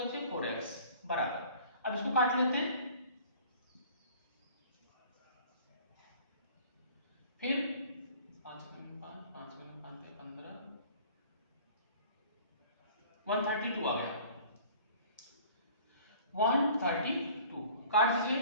4x बराबर। अब इसको काट लेते हैं, फिर 5 5 15 132 आ गया, 132 काट दीजिए,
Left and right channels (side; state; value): both; inverted; correlation -0.49